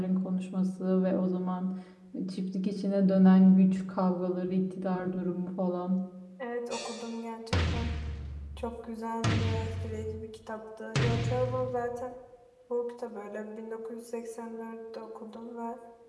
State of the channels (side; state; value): both; identical; correlation 1.00